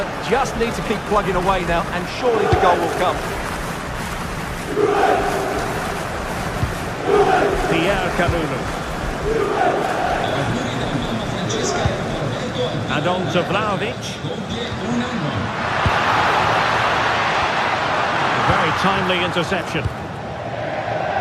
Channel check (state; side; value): identical; both; correlation 1.00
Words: just need to keep plugging away now, and surely the goal will come. Pierre Kalulu. And on to Vlahovic. Very timely interception.